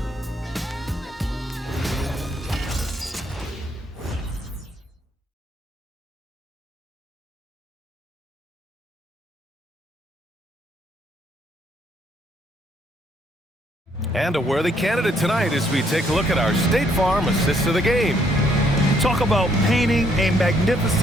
And a worthy candidate tonight as we take a look at our State Farm assist of the game. Talk about painting a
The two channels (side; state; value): both; normal; correlation 0.69